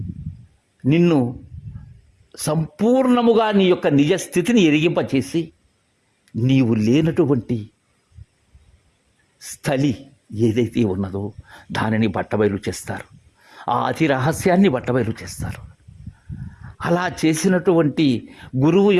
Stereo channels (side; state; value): both; identical; correlation 1.00